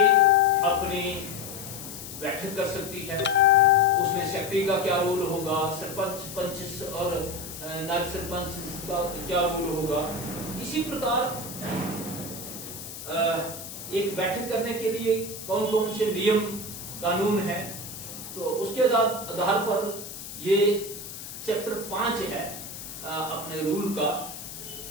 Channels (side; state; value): left; noise; hiss, 11 dB below the sound